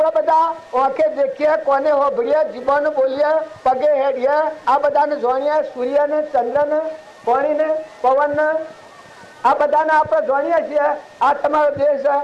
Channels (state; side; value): identical; both; correlation 1.00